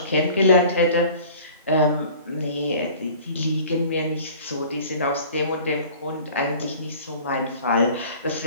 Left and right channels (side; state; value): both; inverted; correlation -0.46